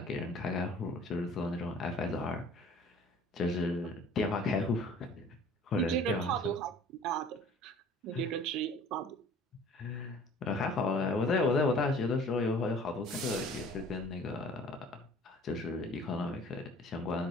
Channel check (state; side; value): normal; both; correlation 0.49